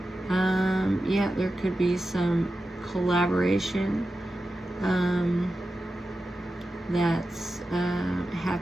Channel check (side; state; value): both; normal; correlation 0.92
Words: yeah, there could be some collaboration that's